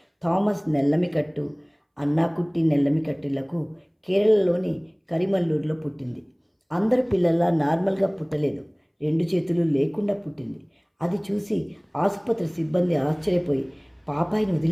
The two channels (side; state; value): both; identical; correlation 1.00